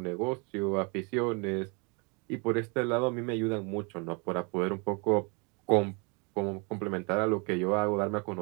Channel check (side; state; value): left; quieter; 32.5 dB